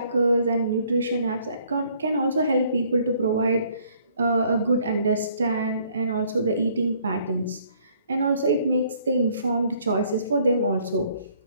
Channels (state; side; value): inverted; both; correlation -0.62